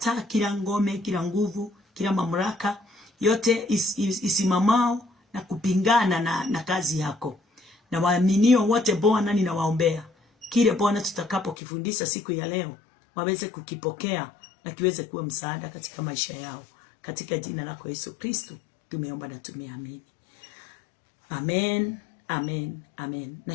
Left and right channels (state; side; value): drops out; right; at 11.6 s